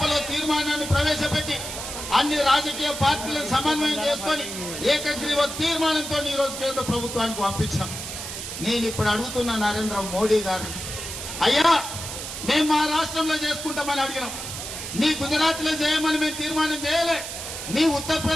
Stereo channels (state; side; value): noise; right; hiss, 7 dB below the sound